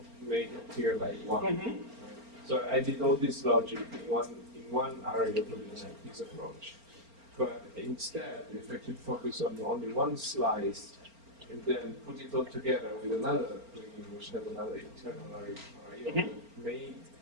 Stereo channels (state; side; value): late; left; 4.4 ms